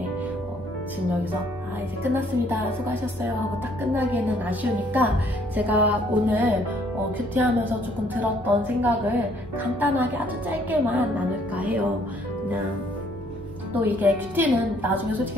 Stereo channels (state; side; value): noise; right; hum, 18 dB below the sound